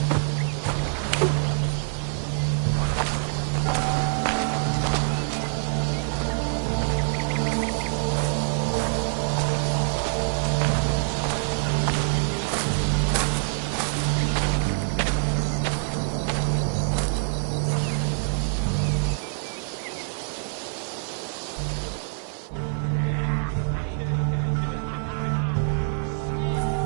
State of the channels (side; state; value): left; silent; digital silence